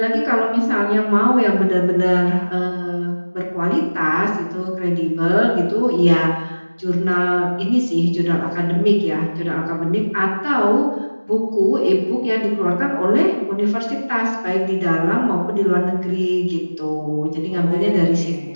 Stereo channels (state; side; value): inverted; both; correlation -1.00